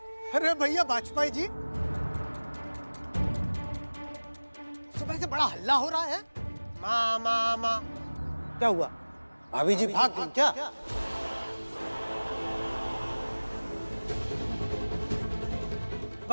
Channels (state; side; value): inverted; both; correlation -1.00